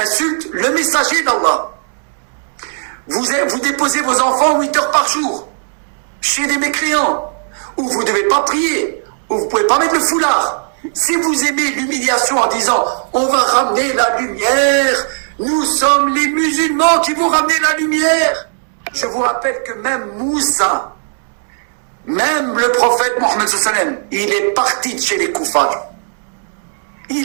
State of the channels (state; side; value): silent; left; digital silence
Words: le messager d'Allah. Vous déposez vos enfants 8 heures par jour, chez des mécréants, où vous ne devez pas prier, où vous ne pouvez pas mettre le foulard. Si vous aimez l'humiliation en disant « on va ramener la lumière, nous sommes les musulmans qui vont ramener la lumière », je vous rappelle que même Moussa, même le prophète Mohammed sallallahu alayhi wa sallam, il est parti de chez les koufars.